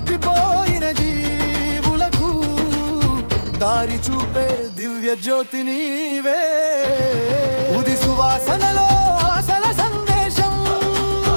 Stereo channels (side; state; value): both; inverted; correlation -1.00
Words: దారి చూపే దివ్య జ్యోతి నీవే ఉది సువాసనలో ఆశల సందేశం